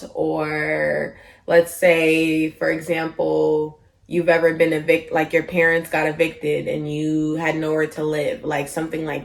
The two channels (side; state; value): both; identical; correlation 1.00